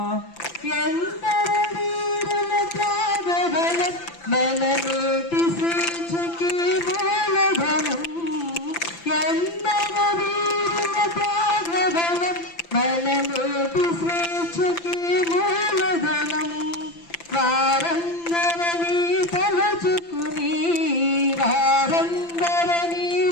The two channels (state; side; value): late; right; 5.9 ms